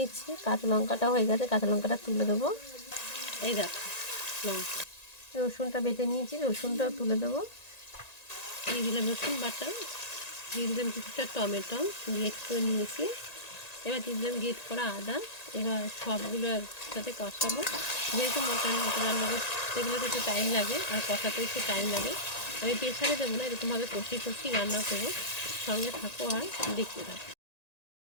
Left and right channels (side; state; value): right; late; 1.9 ms